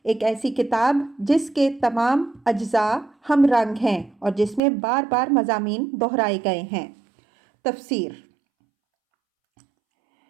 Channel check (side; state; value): left; drops out; at 4.6 s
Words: ایک ایسی کتاب جس کے تمام اجزاء ہم رنگ ہیں اور جس میں بار بار مضامین دہرائے گئے ہیں۔ تفسیر۔